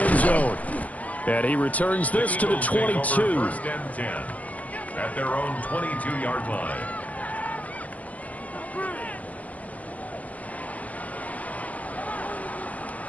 zone. And he returns this to the 22. 1st and 10 at their own 22-yard line.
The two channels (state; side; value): late; right; 0.070 ms